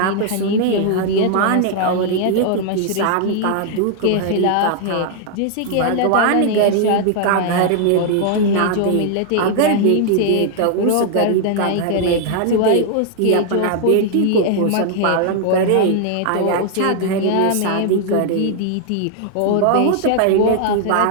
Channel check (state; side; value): different; both; correlation 0.00